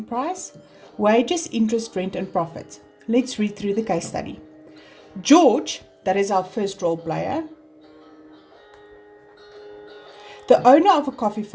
price, wages, interest, rent and profit. Let's read through the case study. George, that is our first role player, the owner of a coffee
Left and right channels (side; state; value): both; identical; correlation 1.00